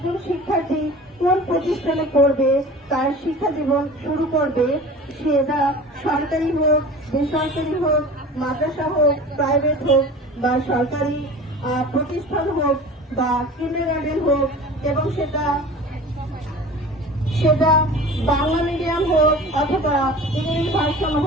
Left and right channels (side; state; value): both; normal; correlation 0.39